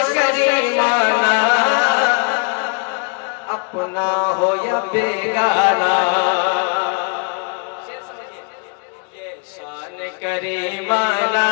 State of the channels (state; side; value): quieter; right; 37.3 dB